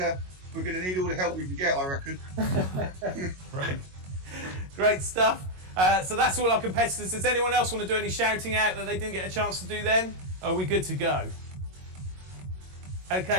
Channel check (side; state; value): left; late; 22 ms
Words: we're going to need all the help we can get, I reckon. Right. Great stuff. So that's all our competitors. Does anyone else want to do any shouting out that they didn't get a chance to do then? Are we good to go?